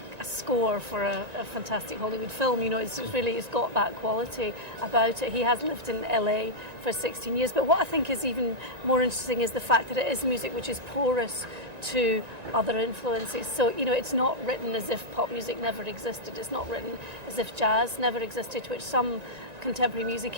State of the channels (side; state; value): left; late; 1.9 ms